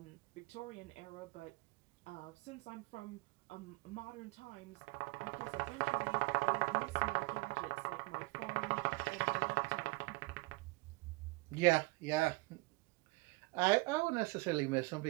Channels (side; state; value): left; quieter; 24.4 dB